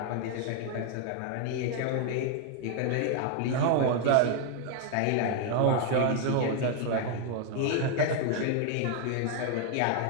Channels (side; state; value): both; different; correlation 0.00